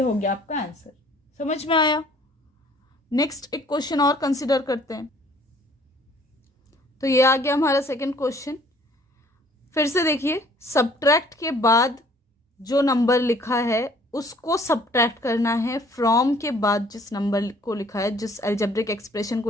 हो गया आपका आंसर। समझ में आया? नेक्स्ट एक क्वेश्चन और कंसिडर करते हैं। तो ये आ गया हमारा सेकंड क्वेश्चन। फिर से देखिए, सब्ट्रैक्ट के बाद जो नंबर लिखा है उसको सब्ट्रैक्ट करना है फ्रॉम के बाद जिस नंबर को लिखा है, जिस अलजेब्रिक एक्सप्रेशन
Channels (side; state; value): both; normal; correlation 0.57